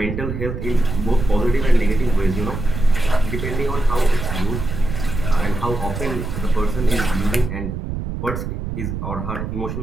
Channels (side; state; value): right; noise; rumble, 5 dB below the sound